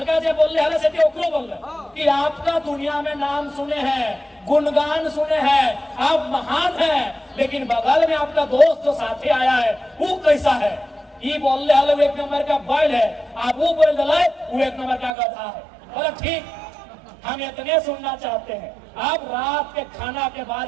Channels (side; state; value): left; drops out; at 15.1 s